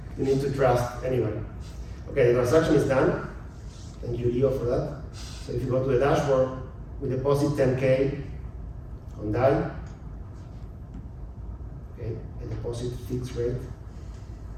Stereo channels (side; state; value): both; identical; correlation 1.00